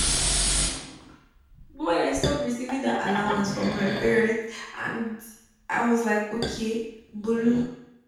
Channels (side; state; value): both; identical; correlation 1.00